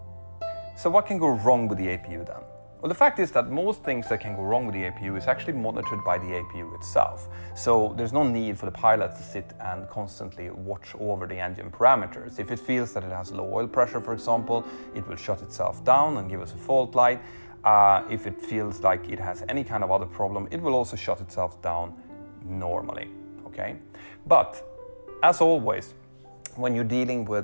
So what can go wrong with the APU then? Well, the fact is that most things that can go wrong with the APU is actually monitored by the APU itself. So there's no need for the pilot to sit and constantly watch over the engine parameters. If it feels that it has low oil pressure, for example, it will shut itself down and give us a fault light. If it feels like it has any kind of other problem, it will also shut itself down normally, okay? But as always, when you're dealing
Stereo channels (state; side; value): inverted; both; correlation -1.00